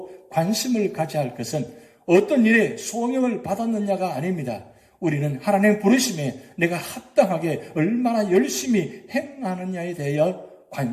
관심을 가져야 할 것은 어떤 일에 소명을 받았느냐가 아닙니다. 우리는 하나님의 부르심에 내가 합당하게 얼마나 열심히 행하느냐에 대하여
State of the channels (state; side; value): identical; both; correlation 1.00